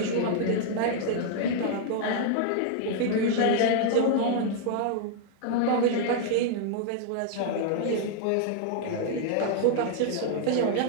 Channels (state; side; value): different; both; correlation 0.00